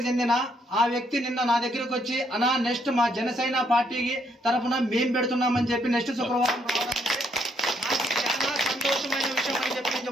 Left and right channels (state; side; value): normal; both; correlation 0.72